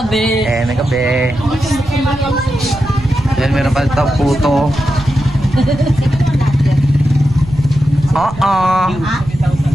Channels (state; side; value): noise; right; rumble, 14 dB below the sound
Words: Then meron pa ito puto. Oo.